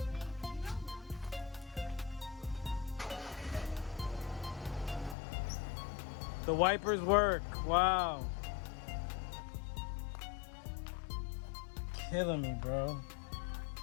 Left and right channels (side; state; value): right; drops out; at 5.2 s